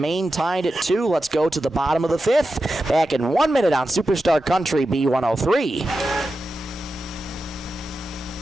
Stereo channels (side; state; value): both; normal; correlation 0.91